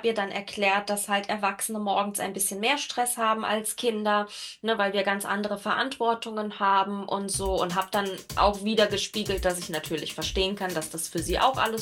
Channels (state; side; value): identical; both; correlation 1.00